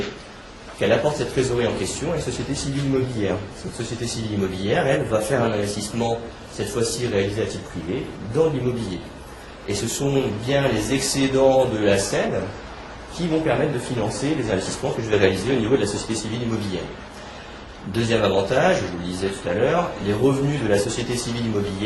qu'elle apporte cette trésorerie en question à une société civile immobilière. Cette société civile immobilière, elle, va faire un investissement, cette fois-ci réalisé à titre privé, dans l'immobilier. Et ce sont bien les excédents de la selle qui vont permettre de financer les investissements que je vais réaliser au niveau de la société civile immobilière. Deuxième avantage, je vous le disais tout à l'heure, les revenus de la société civile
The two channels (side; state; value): both; identical; correlation 1.00